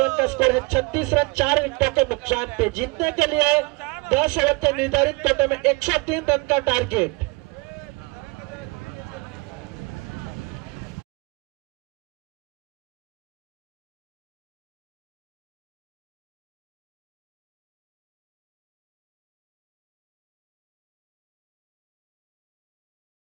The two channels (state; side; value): quieter; left; 27.2 dB